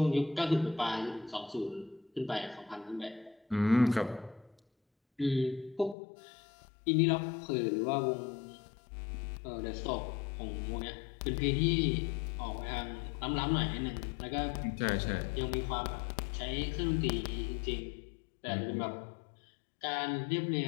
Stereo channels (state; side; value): drops out; right; at 6.0 s